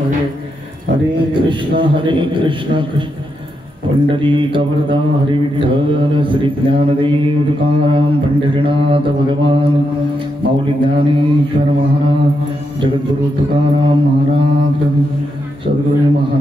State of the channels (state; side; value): normal; both; correlation 0.83